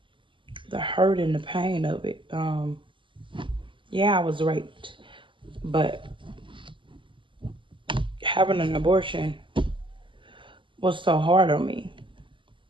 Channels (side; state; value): left; late; 0.24 ms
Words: hurt and the pain of it. Yeah, I was raped, but having an abortion was so hard on me.